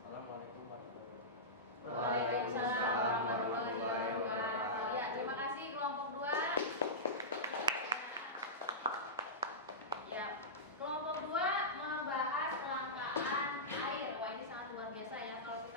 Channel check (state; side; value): normal; both; correlation -0.15